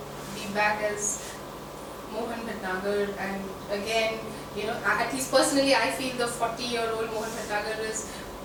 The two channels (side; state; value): both; identical; correlation 1.00